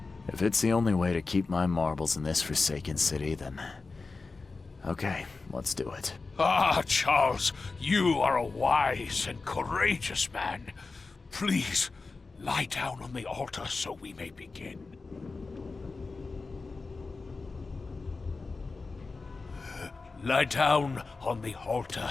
If it's the only way to keep my marbles in this forsaken city, then... okay, let's do it. Ah, Charles, you are a wise and courageous man. Please, lie down on the altar so we may begin. Lie down on the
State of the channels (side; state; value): right; quieter; 4.0 dB